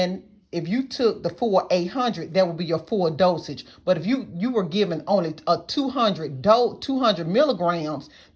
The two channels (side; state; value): both; identical; correlation 1.00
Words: if you took the full 800, that would be your full dosage. But if you were given only a 200 milligrams,